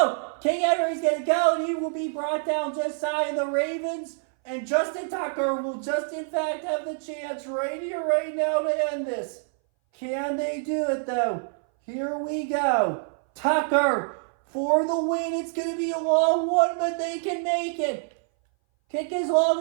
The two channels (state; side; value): silent; left; 60 dB below the other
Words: King Henry's going to go, and he will be brought down just shy of the Ravens. And Justin Tucker will just, in fact, have the chance right here, right now to end this. Can they do it, though? Here we go. Tucker for the win. It's going to be a long one, but they can make it. Kick is long